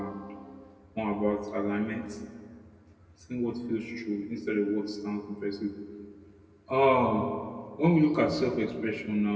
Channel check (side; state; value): both; identical; correlation 1.00